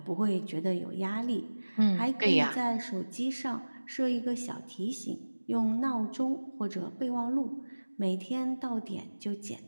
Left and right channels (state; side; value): inverted; both; correlation -1.00